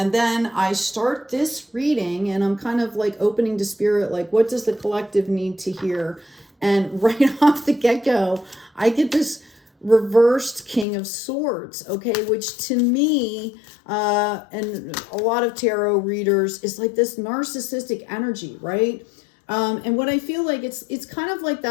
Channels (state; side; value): drops out; right; at 10.9 s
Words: then I start this reading and I'm kind of like opening to spirit, like what does the collective need to hear? And right off the get-go, I get this reversed King of Swords, okay, which to me and a lot of tarot readers is like this narcissistic energy, right? And what I feel like it's kind of like